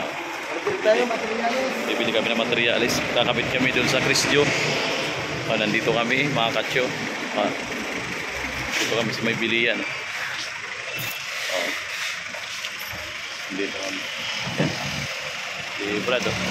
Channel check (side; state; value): both; identical; correlation 1.00